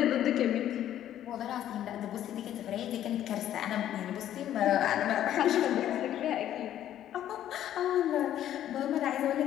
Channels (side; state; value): right; quieter; 11.6 dB